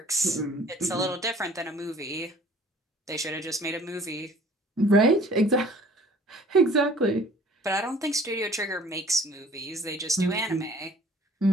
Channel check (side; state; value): both; normal; correlation 0.52